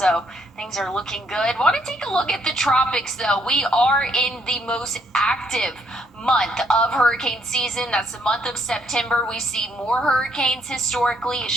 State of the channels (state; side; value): normal; both; correlation 0.70